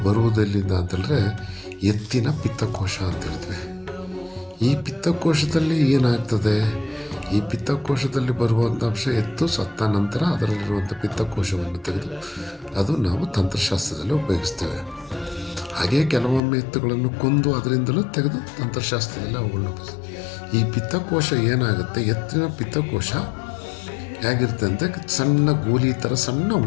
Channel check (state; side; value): drops out; right; at 16.4 s